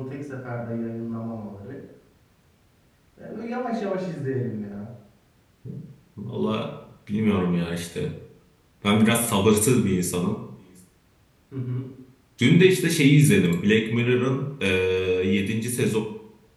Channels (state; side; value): identical; both; correlation 1.00